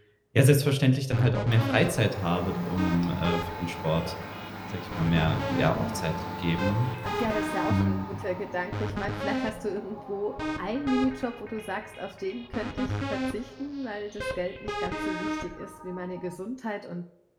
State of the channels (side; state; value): both; identical; correlation 1.00